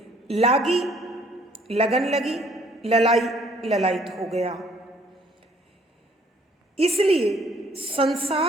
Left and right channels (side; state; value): both; normal; correlation 0.61